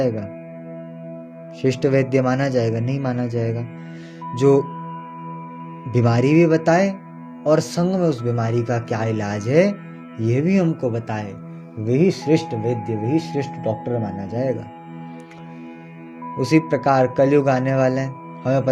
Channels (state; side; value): identical; both; correlation 1.00